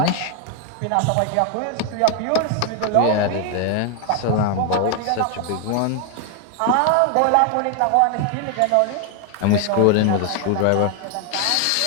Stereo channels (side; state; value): both; different; correlation 0.01